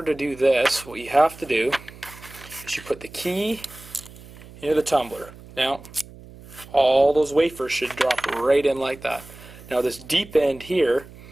to do this, what you have to do is you put the key into the tumbler. Now all those wafers should drop right in like that. Now this deep end here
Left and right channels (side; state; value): right; noise; hum, 19 dB below the sound